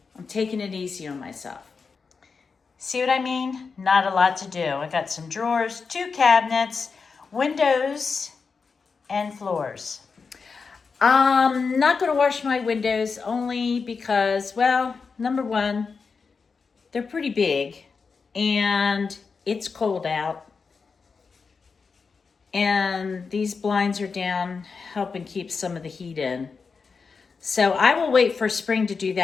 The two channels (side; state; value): right; quieter; 5.1 dB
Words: I'm taking it easy on myself. See what I mean? Not a lot to do. I got some drawers, 2 cabinets, windows, and floors. I'm not going to wash my windows only because, well, number one, they're pretty big and it's cold out. And these blinds are down helping keep some of the heat in. So I will wait for spring to do